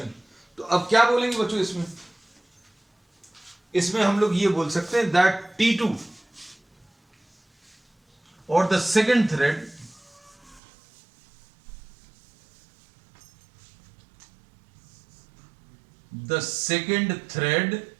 तो अब क्या बोलेंगे बच्चों इसमें हम लोग ये बोल सकते हैं दैट T2 और the second thread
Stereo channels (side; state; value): left; drops out; at 10.6 s